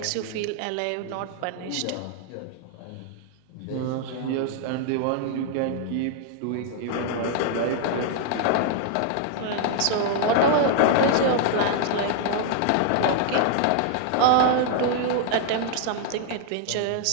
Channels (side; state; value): both; different; correlation 0.00